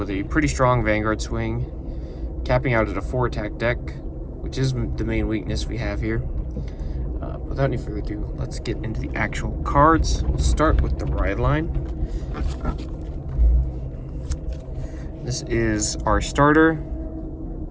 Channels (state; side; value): identical; both; correlation 1.00